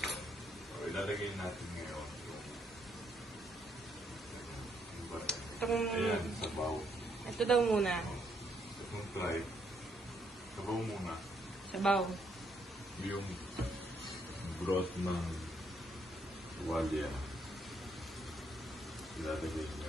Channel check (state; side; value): normal; both; correlation 0.73